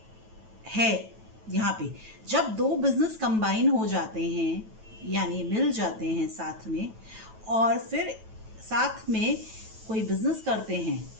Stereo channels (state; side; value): late; left; 9.1 ms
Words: है यहाँ पे। जब दो बिजनेस कंबाइन हो जाते हैं यानी मिल जाते हैं साथ में, और फिर साथ में कोई बिजनेस करते हैं,